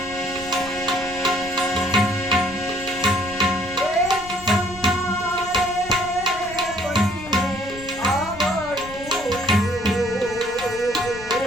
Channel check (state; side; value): noise; left; rumble, 17 dB below the sound